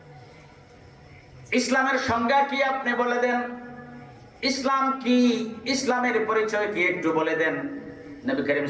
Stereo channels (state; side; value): identical; both; correlation 1.00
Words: ইসলামের সংজ্ঞা কি আপনি বলে দেন। ইসলাম কি, ইসলামের পরিচয় কি একটু বলে দেন। নবী করিম